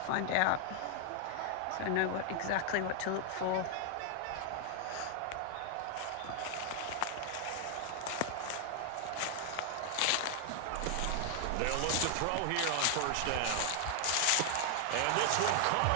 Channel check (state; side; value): different; both; correlation 0.00